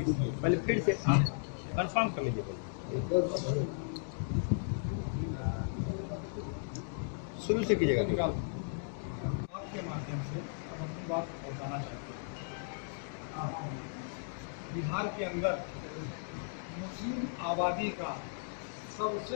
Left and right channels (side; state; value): right; silent; digital silence